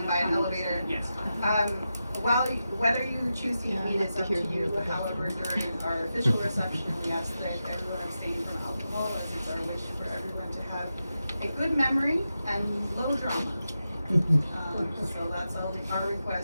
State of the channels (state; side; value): inverted; both; correlation -0.90